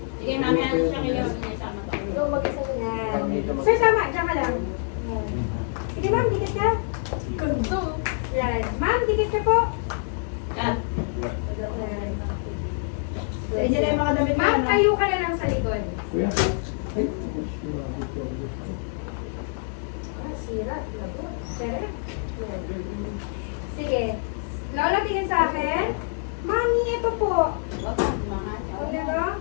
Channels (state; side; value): silent; right; 61 dB below the other